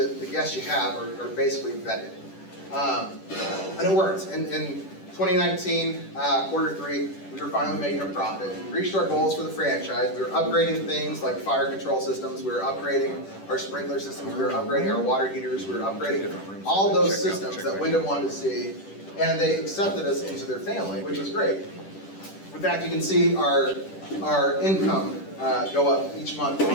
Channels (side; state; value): right; late; 10 ms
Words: the guests you have are basically vetted. And it worked. In 2019, quarter 3, we were finally making a profit. We reached our goals for the franchise. We were upgrading things like fire control systems. We were upgrading our sprinkler systems. We were upgrading our water heaters. We were upgrading all those systems that Wyndham wanted to see. And they accepted us into their family, which was great. In fact, you can see our income go up each month